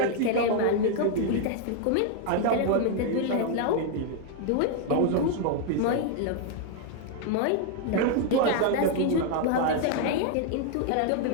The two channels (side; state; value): both; different; correlation 0.00